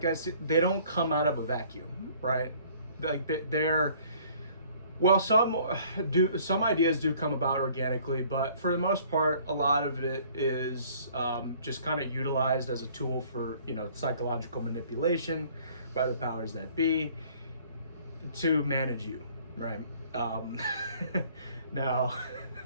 they don't come out of a vacuum, right? Like they're some ideas do come about organically, but for the most part, a lot of it is just kind of utilized as a tool for psychological manipulation by the powers that be to manage you, right? Now,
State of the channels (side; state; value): both; inverted; correlation -0.56